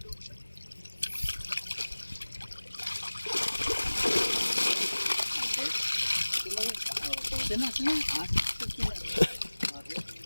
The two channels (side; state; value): both; inverted; correlation -1.00